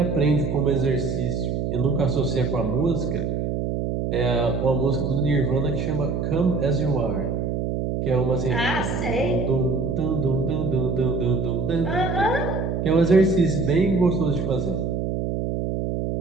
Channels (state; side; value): noise; right; hum, 1 dB below the sound